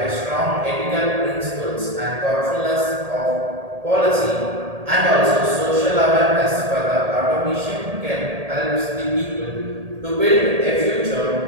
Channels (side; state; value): left; late; 1.8 ms